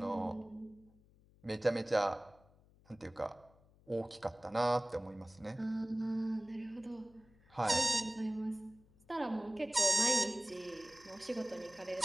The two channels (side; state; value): left; noise; hum, 28 dB below the sound